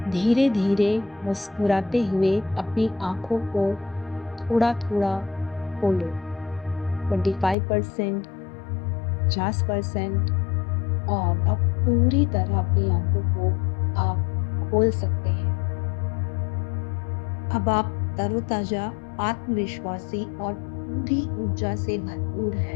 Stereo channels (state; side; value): drops out; right; at 7.6 s